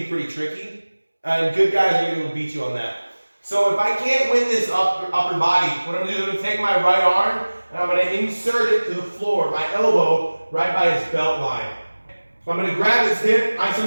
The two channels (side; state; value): both; inverted; correlation -1.00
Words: pretty tricky. And good guys are going to beat you on that. So if I can't win this upper body, what I'm going to do is I'm going to take my right arm and I'm going to insert it to the floor, my elbow right by his belt line. So I'm going to grab his hip, I